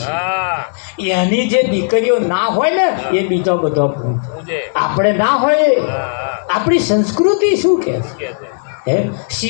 છે એની જે દીકરીઓ ના હોય ને એ બીજો બધો આપણે ના હોય આપણી સંસ્કૃતિ શું કહે હે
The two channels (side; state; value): right; silent; digital silence